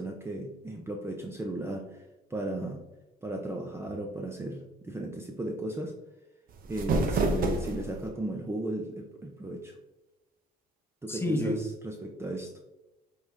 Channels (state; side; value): normal; both; correlation 0.63